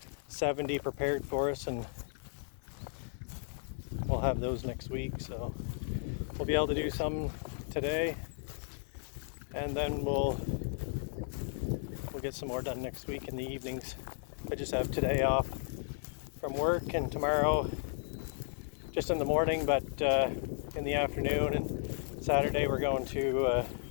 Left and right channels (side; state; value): right; silent; 55 dB below the other